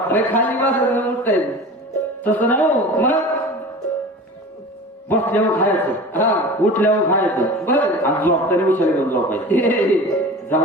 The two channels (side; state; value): both; normal; correlation 0.36